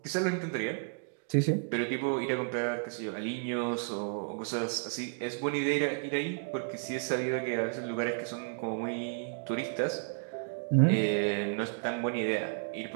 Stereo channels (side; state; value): left; quieter; 38.5 dB